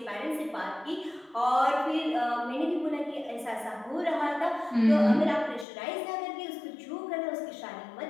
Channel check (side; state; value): right; drops out; at 5.7 s